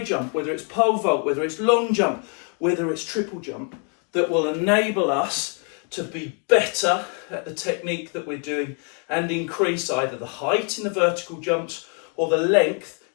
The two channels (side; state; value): right; quieter; 38.8 dB